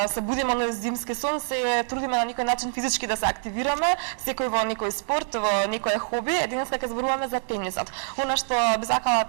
се будиме на зимски сон, се трудиме на некој начин физички да се активираме, секој во некој спорт, во некое хоби. Денеска ќе зборуваме за тенисот. Она што би сакала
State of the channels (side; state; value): left; silent; 61 dB below the other